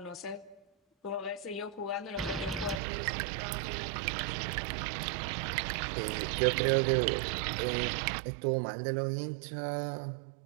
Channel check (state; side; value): drops out; left; at 2.8 s